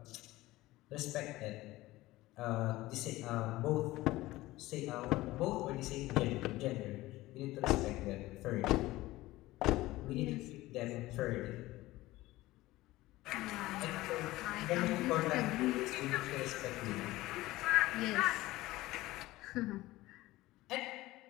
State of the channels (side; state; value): right; quieter; 18.0 dB